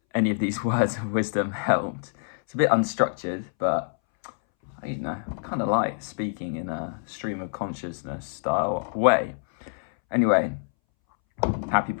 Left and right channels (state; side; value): silent; right; 61 dB below the other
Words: any of these words of wisdom helped. It's a bit unstructured, but I kind of like speaking in a stream of consciousness style way. Anyway, happy